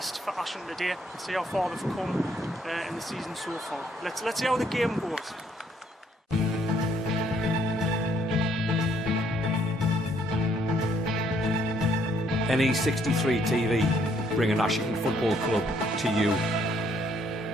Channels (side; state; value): both; normal; correlation 0.68